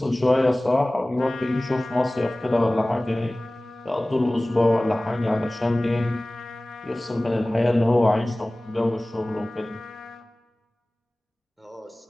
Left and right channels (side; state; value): both; normal; correlation 0.98